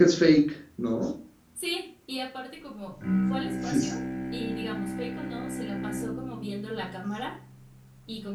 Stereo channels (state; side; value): identical; both; correlation 1.00